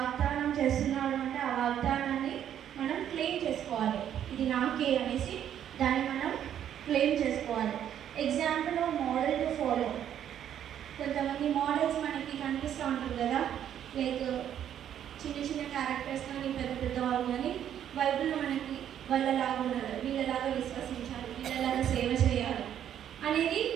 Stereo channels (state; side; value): quieter; left; 10.1 dB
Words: చేస్తున్నాడు అంటే ఆ వాగ్దానాన్ని మనం క్లెయిమ్ చేసుకోవాలి. ఇది నాకే అనేసి దాన్ని మనం క్లెయిమ్ చేసుకోవాలి. Example model to follow. కొంతమంది మోడల్స్ మనకి కనిపిస్తూ ఉంటుంది కదా, లైక్ చిన్న చిన్న క్యారెక్టర్స్ కానీ పెద్ద పెద్ద వాళ్ళు కానీ బైబిల్లో మనకి వాళ్ళలాగా ఉండాలి, వీళ్ళలాగా విశ్వసించాలి, వీళ్ళలాగా సేవ చేయాలి అనేది